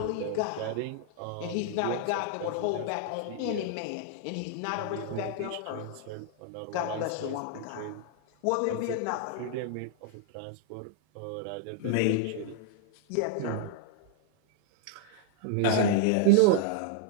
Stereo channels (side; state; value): both; different; correlation -0.01